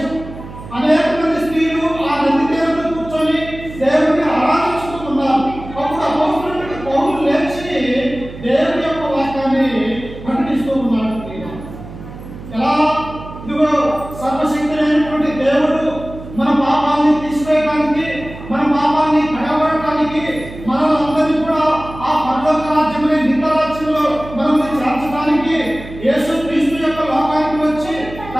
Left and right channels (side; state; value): right; noise; hum, 14 dB below the sound